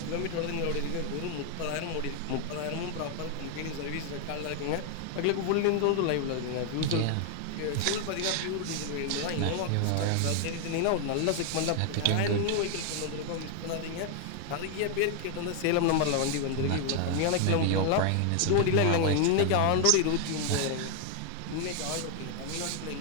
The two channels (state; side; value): different; both; correlation 0.00